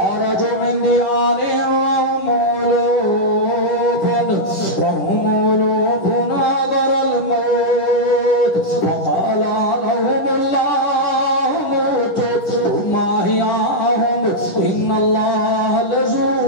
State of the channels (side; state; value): right; late; 10 ms